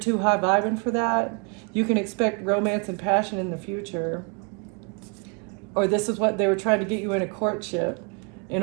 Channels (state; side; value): quieter; left; 34.5 dB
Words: high vibing for that. You can expect romance and passion in the future. Or this is what they were trying to get you in a courtship in